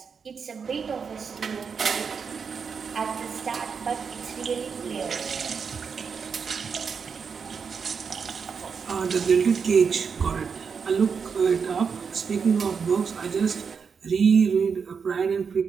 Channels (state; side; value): quieter; left; 6.0 dB